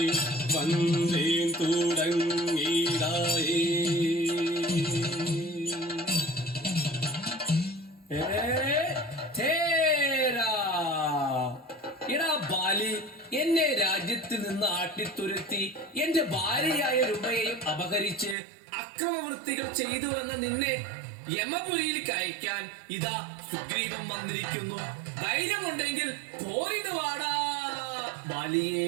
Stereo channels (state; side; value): drops out; left; at 18.4 s